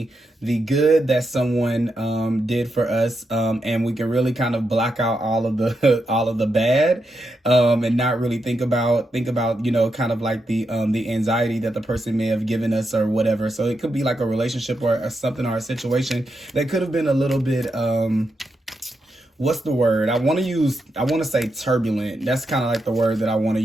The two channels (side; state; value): both; normal; correlation 0.85